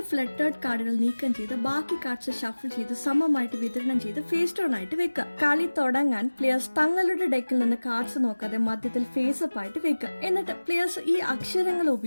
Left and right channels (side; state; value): both; inverted; correlation -1.00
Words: ഫ്ലട്ടേർഡ് കാർഡുകൾ നീക്കം ചെയ്ത് ബാക്കി കാർഡ്സ് ഷഫിൾ ചെയ്ത് സമമായിട്ട് വിതരണം ചെയ്ത് ഫേസ് ഡൗൺ ആയിട്ട് വെക്കുക. കളി തുടങ്ങാൻ പ്ലേയേഴ്സ് തങ്ങളുടെ ഡെക്കിൽ നിന്ന് കാർഡ്സ് നോക്കാതെ മധ്യത്തിൽ ഫേസ് അപ്പ് ആയിട്ട് വെക്കുക. എന്നിട്ട് പ്ലേയേഴ്സ് ഈ അക്ഷരങ്ങൾ